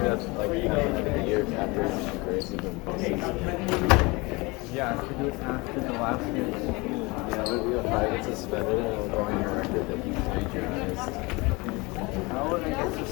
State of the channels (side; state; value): right; quieter; 25.2 dB